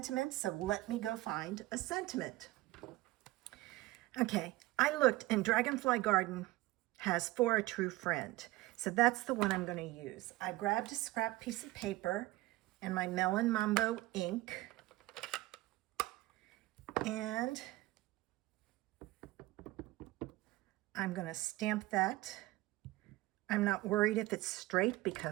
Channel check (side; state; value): left; quieter; 18.5 dB